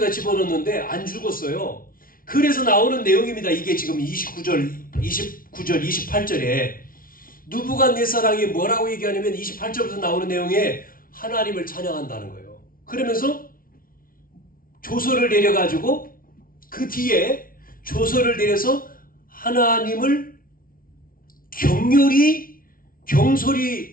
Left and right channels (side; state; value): right; late; 0.42 ms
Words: 집어넣는데 안 죽었어요. 그래서 나오는 내용입니다. 이게 지금 29절, 28절에 느부갓네살이 뭐라고 얘기하냐면 28절부터 나오는 내용에 하나님을 찬양한다는 거예요. 그러면서 조서를 내려가지고 그 뒤에 조서를 내려서 하나님을